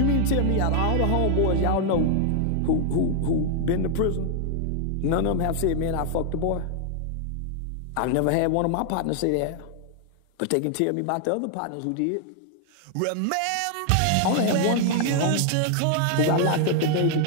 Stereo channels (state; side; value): different; both; correlation 0.00